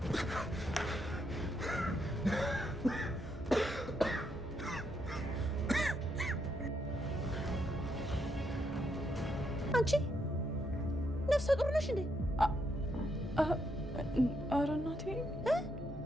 አንቺ ነፍሰ ጡር ነሽ እንዴ? ኧረ እናቴ!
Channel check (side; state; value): both; normal; correlation 0.78